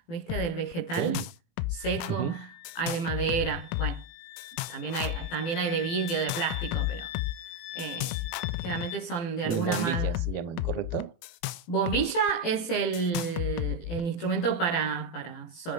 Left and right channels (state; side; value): late; right; 18 ms